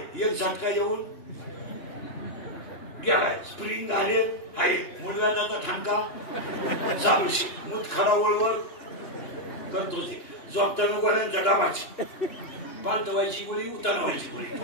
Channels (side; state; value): right; late; 2.9 ms